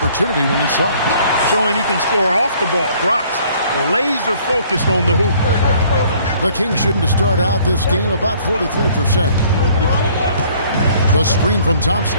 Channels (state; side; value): inverted; both; correlation -0.58